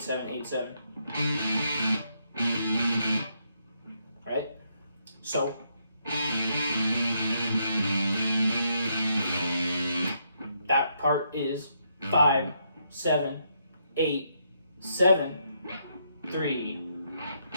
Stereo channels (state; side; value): inverted; both; correlation -0.76